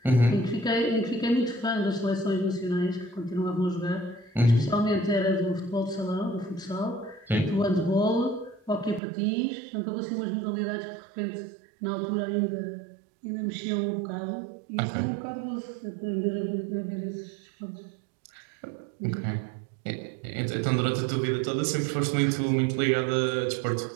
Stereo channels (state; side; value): drops out; left; at 9.0 s